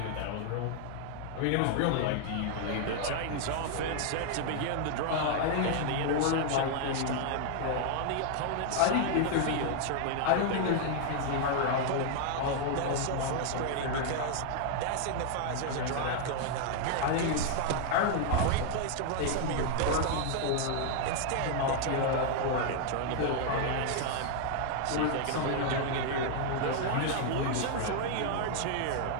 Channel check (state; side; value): different; both; correlation 0.00